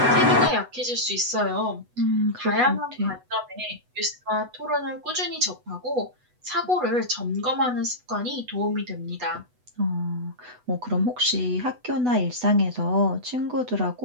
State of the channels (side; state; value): left; late; 8.1 ms